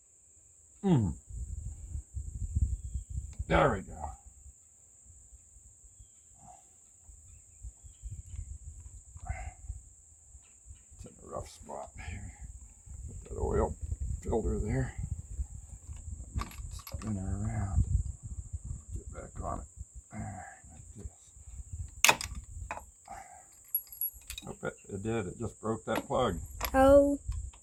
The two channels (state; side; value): identical; both; correlation 1.00